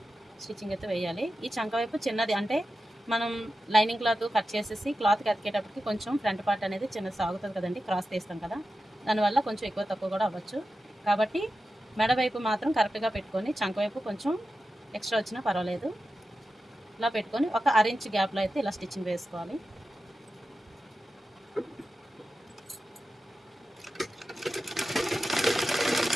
స్టిచ్చింగ్ అయితే వేయాలి. ఈ చంక వైపు చిన్నది, అంటే మనం లైనింగ్ క్లాత్ కట్ చేసేసి క్లాత్కి అతికేటప్పటికి కొంచెం ఫ్రంట్ పార్ట్ అనేది చిన్న సాగుతుంది కదండి, క్రాస్ తీస్తాం కదా, దానివల్ల కొంచెం ఎక్కువ తక్కువ కూడా అవ్వచ్చు. కాబట్టి మెడ వైపు మాత్రం కరెక్ట్గా పెట్టుకొని, చంక వైపు కొంచెం ఎక్స్ట్రా వచ్చినా పర్వాలేదు. ఇలా పెట్టుకొని ఒక 1 ఇంచ్ గ్యాప్లో అయితే ఇలా స్టిచ్చింగ్ వేసుకోవాలి.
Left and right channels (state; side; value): normal; both; correlation 0.92